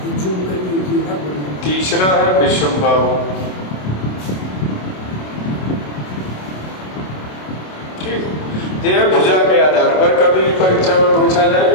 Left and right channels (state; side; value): late; right; 27 ms